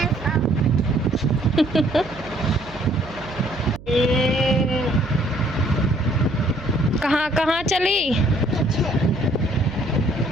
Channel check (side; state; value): right; noise; hum, 18 dB below the sound